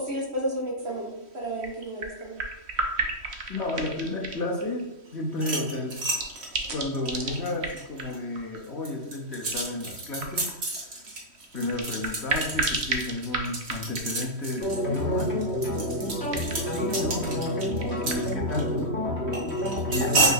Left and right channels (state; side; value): late; left; 3.1 ms